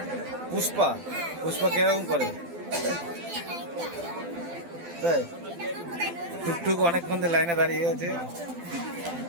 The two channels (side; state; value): left; late; 12 ms